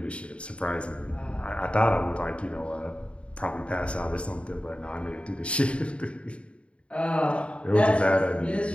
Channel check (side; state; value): right; late; 0.059 ms